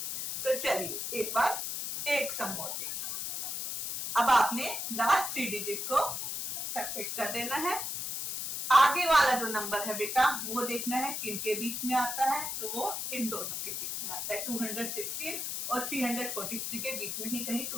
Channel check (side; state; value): left; noise; hiss, 3 dB below the sound